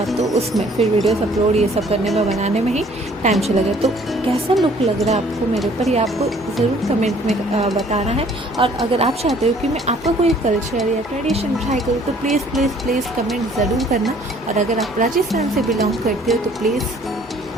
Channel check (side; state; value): both; normal; correlation 0.57